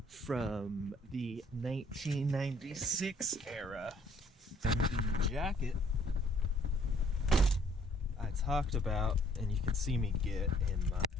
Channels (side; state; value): both; normal; correlation 0.61